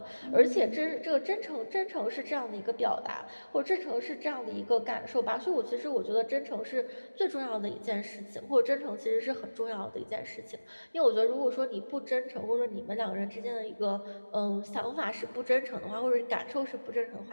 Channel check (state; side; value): inverted; both; correlation -1.00